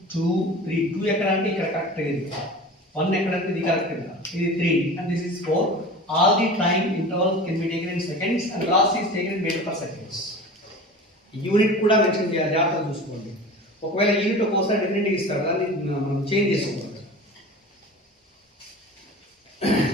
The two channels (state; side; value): normal; both; correlation 0.36